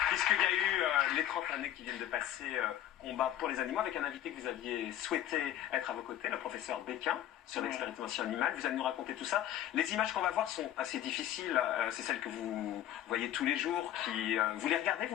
puisqu'il y a eu les 30 années qui viennent de passer combat pour les animaux, avec un invité que vous aviez souhaité être à vos côtés, le professeur Béquin, sur l'expérimentation animale. Vous allez nous raconter tout ça. Les images qu'on va voir sont assez difficiles. C'est celles que vous voyez tous les jours. Vous les regardez,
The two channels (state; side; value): quieter; right; 12.2 dB